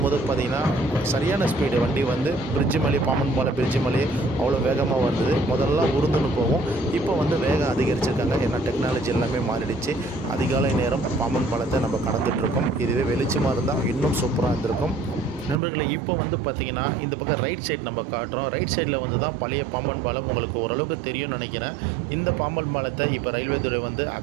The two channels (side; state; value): left; drops out; at 15.6 s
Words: பார்த்திங்கன்னா சரியான ஸ்பீடு வண்டி வந்து பிரிட்ஜு மேலே பாம்பன் பாலம் பிரிட்ஜு மேலே அவ்வளோ வேகமாக வந்தது. முதல்ல உருந்துன்னு போகும், இப்போ வந்து வேகம் அதிகரிச்சிருக்காங்க. ஏன்னா டெக்னாலஜி எல்லாமே மாறிடுச்சு. அதிகாலை நேரம் பாம்பன் பாலத்தை நம்ம கடந்துகிட்ருக்கோம். இதுவே வெளிச்சமாக இருந்தால் இன்னும் சூப்பராக இருந்திருக்கும் நண்பர்களே. இப்போ வந்து பார்த்திங்கன்னா இந்த பக்கம் ரைட் சைடு நம்ம காட்டுறோம். ரைட் சைடில் வந்து தான் பழைய பாம்பன் பாலம். உங்களுக்கு ஓரளவுக்கு தெரியும்னு நினைக்கிறேன். இந்த பாம்பன் பாலத்தை இப்போ ரயில்வே துறை வந்து